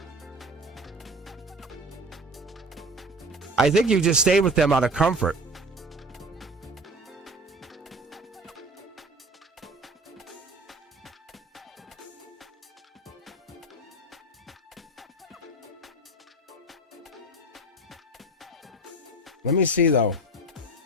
I think you just stayed with them out of comfort. Let me see though.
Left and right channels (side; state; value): both; normal; correlation 0.36